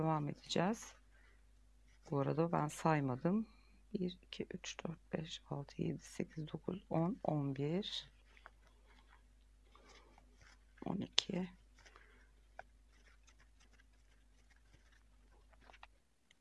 edeceğiz. Bu arada ben saymadım. 1, 2, 3, 4, 5, 6, 7, 8, 9, 10, 11, 12.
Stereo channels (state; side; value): identical; both; correlation 1.00